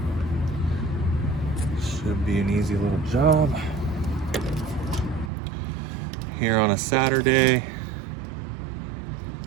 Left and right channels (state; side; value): drops out; left; at 5.3 s